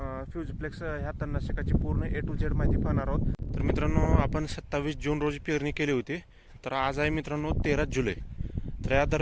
फ्युजिप्लेक्स ह्या तणनाशकाची पूर्ण A to Z माहिती पाहणार आहोत. तर मित्रांनो, आपण 27 जून रोजी पेरणी केली होती. तर आज आहे मित्रांनो 13 जुलै. तर या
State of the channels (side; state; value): both; identical; correlation 1.00